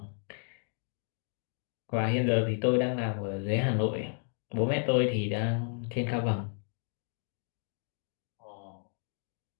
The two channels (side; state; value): right; silent; 56 dB below the other